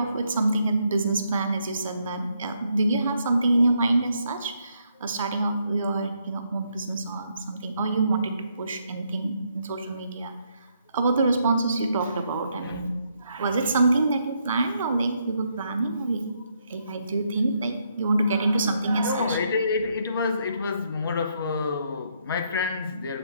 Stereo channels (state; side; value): inverted; both; correlation -0.75